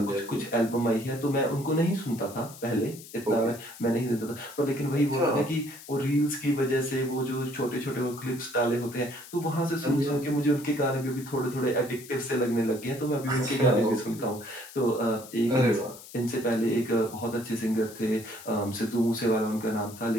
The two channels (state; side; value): noise; left; hiss, 17 dB below the sound